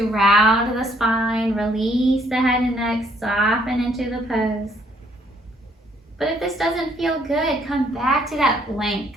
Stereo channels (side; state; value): both; normal; correlation 0.66